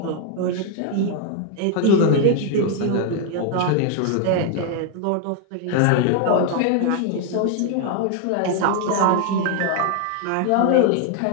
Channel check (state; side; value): different; both; correlation 0.00